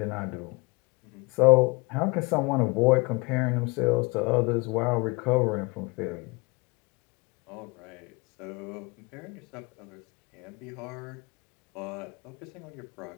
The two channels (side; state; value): right; quieter; 27.4 dB